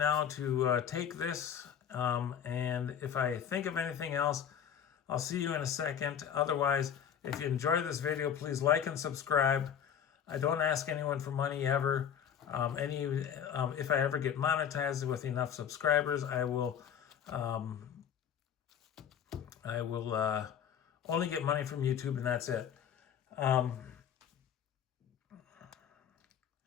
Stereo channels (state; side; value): quieter; right; 8.5 dB